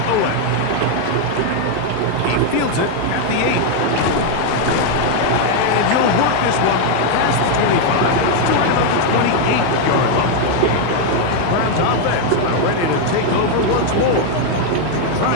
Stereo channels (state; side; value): different; both; correlation 0.01